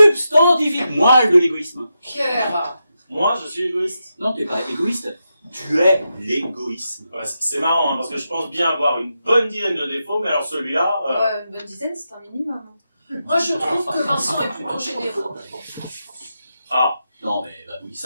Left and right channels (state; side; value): inverted; both; correlation -0.87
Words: moelle de l'égoïsme. Pierre. Moi, je suis égoïste. Non, t'es pas égoïste, tu es l'égoïsme. Ouais, c'est marrant, hein, parce que je pense bien avoir une bonne dizaine de défauts, mais alors celui-là... Une bonne dizaine, c'est un minimum. Moi, je trouve que Vincent est plutôt généreux. Ah, Non mais bah oui,